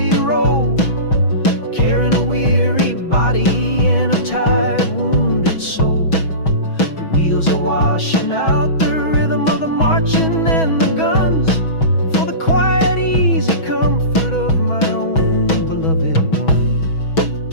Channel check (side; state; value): right; late; 6.2 ms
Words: road, carrying a weary body and a tired, wounded soul. The wheels are washing out the rhythm of the marching and the guns, for the quiet, easy comfort of my own beloved one.